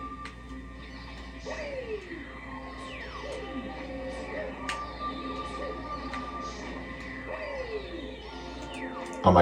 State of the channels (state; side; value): identical; both; correlation 1.00